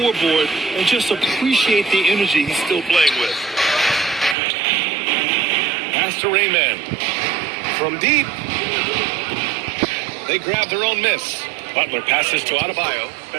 and just appreciate the energy he's still playing with. Pass to Rayman. From deep. They grab their own miss. Butler passes to Adebayo,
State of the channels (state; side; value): drops out; left; at 4.4 s